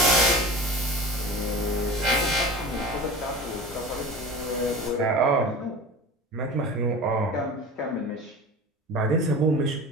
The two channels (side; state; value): both; normal; correlation 0.34